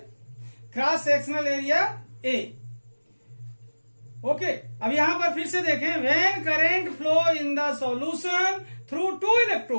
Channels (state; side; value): inverted; both; correlation -1.00